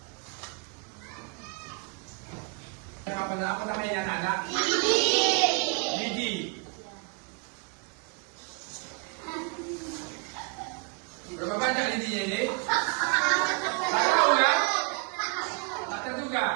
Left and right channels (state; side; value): quieter; left; 33.6 dB